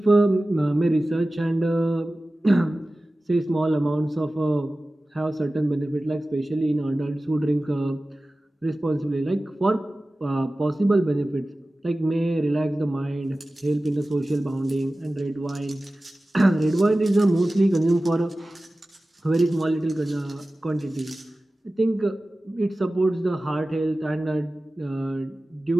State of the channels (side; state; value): both; normal; correlation 0.96